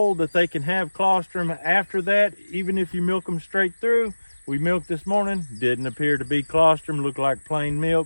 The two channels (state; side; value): inverted; both; correlation -1.00